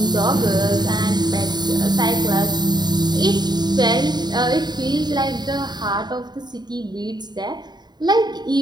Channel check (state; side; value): late; left; 0.20 ms